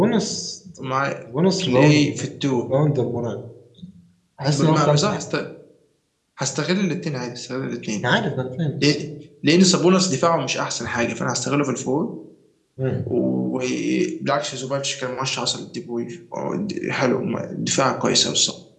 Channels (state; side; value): identical; both; correlation 1.00